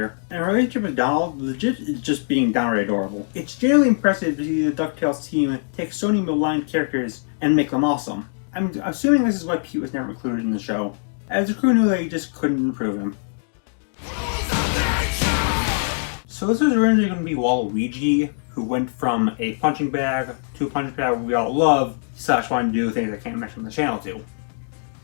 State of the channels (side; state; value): right; silent; digital silence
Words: and her relationship with Donald legit is just being downright adorable. It's generally impressive to see the DuckTales team take so many maligned characters and make them awesome. I'm assuming this is why Pete was never included in the show, as the crew knew they just couldn't improve him. So this was originally going to be Waluigi, who went from a punching bag to a punching bag we all love, / wanted to do things I can't mention on the channel to.